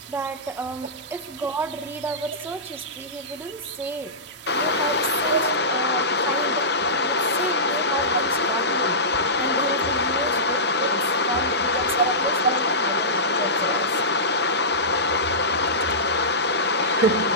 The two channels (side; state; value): both; normal; correlation -0.18